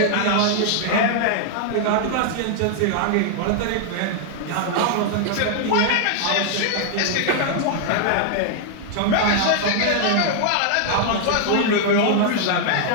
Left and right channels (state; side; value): different; both; correlation -0.01